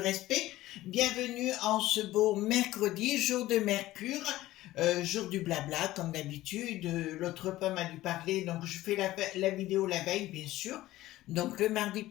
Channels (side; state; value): right; quieter; 16.1 dB